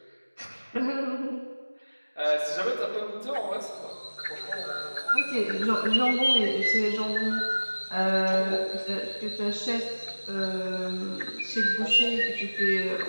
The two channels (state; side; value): inverted; both; correlation -1.00